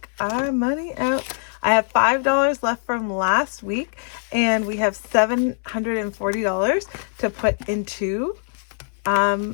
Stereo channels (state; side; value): silent; right; 64 dB below the other